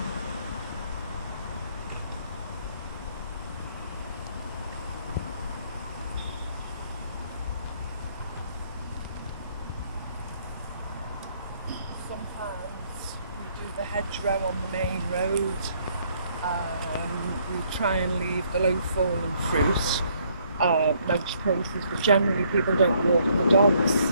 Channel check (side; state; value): both; inverted; correlation -0.67